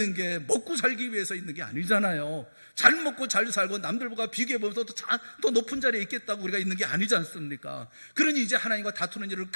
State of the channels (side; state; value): both; inverted; correlation -1.00